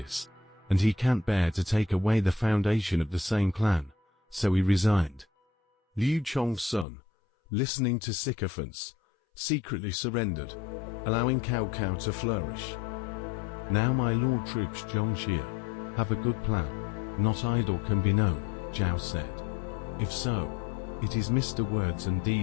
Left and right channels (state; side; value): drops out; right; at 6.9 s